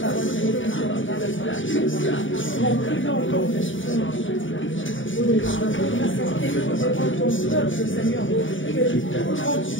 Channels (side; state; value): right; late; 0.56 ms